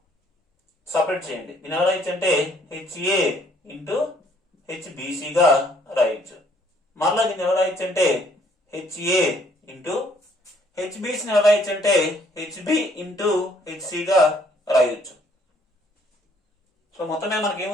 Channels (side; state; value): both; normal; correlation 0.63